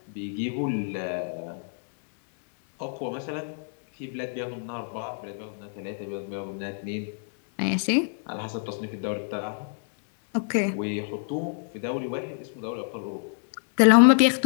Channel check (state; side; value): silent; right; digital silence